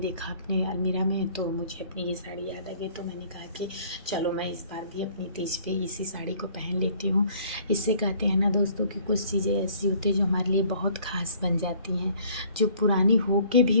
अपने अलमीरा में तो मुझे अपनी ये साड़ी याद आ गई। तो मैंने कहा कि चलो मैं इस बार भी अपनी तीज पे इसी साड़ी को पहन लेती हूँ। इससे कहते हैं ना दोस्तों कि कुछ चीज़ें ऐसी होती हैं जो हमारे लिए बहुत ख़ास बन जाती हैं, जो पुरानी हो के भी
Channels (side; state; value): both; inverted; correlation -0.56